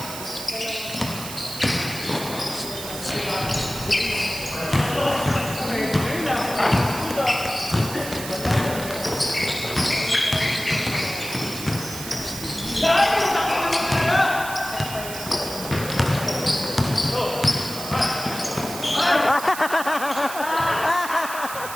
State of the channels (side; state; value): right; noise; hiss, 9 dB below the sound